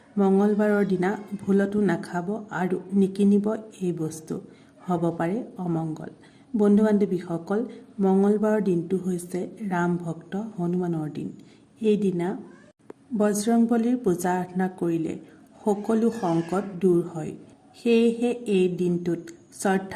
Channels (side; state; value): both; identical; correlation 1.00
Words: মঙলবাৰৰ দিনা ভুলতো নাখাব আৰু নিকিনিব এই বস্তু, হ'ব পাৰে অমংগল। বন্ধু বান্ধৱীসকল, মঙলবাৰৰ দিনটো হৈছে ৰাম ভক্ত হনুমানৰ দিন। এই দিনা বজৰংবলীৰ পূজা আৰাধনা কৰিলে সকলো সংকট দূৰ হয়। সেয়েহে এই দিনটোত